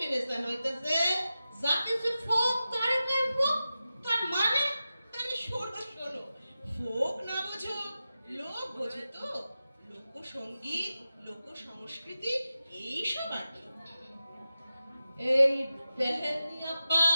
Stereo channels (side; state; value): both; inverted; correlation -0.93